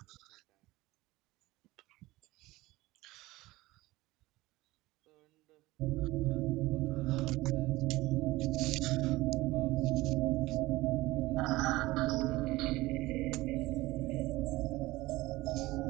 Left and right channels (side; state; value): left; quieter; 19.2 dB